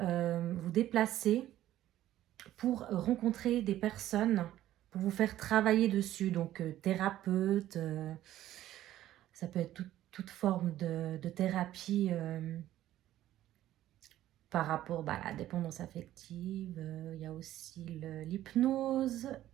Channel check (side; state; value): left; quieter; 13.5 dB